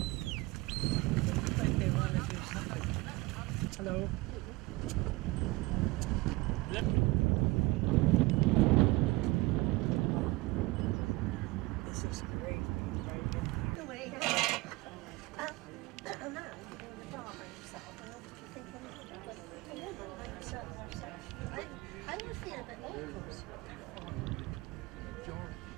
Looks like they want to do something. Hello. This is great, right? I would feel a bit awkward.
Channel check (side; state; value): left; quieter; 21.8 dB